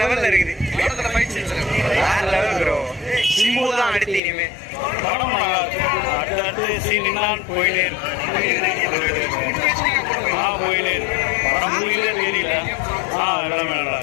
லெவல்ல இருக்குது. படத்துல ஃபைட் சீன்ஸ் வேற லெவல் ப்ரோ. சிம்பு தான் அடுத்து இனிமே. படம் நல்லா இருக்கு. அடுத்தடுத்து சீன் எல்லாம் போயிட்டே இருக்கு. போயிட்டே இருக்கு. படம் முடியல தெரியல. எல்லாமே நல்லா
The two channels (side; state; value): right; drops out; at 4.2 s